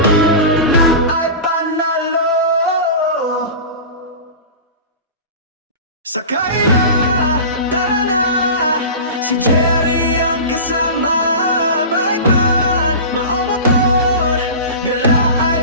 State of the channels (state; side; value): inverted; both; correlation -0.31